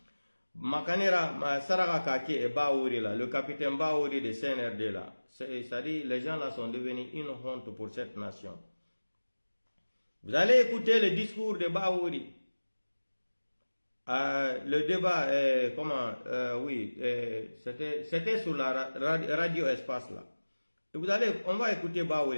Makanera Saraka Kake et Baouri là, le capitaine Baouri de CNRD là. C'est-à-dire, les gens là sont devenus une honte pour cette nation. Vous allez écouter le discours de Baouri. Le débat, c'était sur la radio Espace là. Et on va écouter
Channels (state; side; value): inverted; both; correlation -1.00